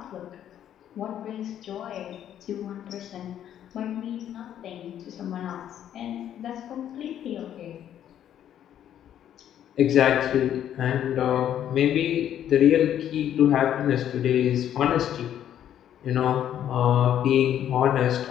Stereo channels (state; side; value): quieter; right; 10.5 dB